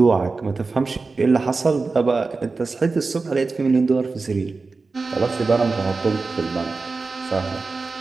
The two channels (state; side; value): quieter; left; 4.0 dB